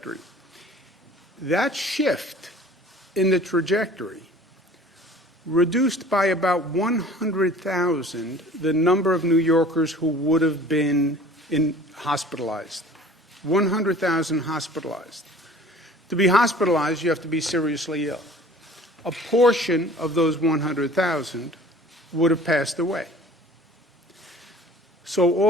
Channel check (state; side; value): normal; both; correlation 0.47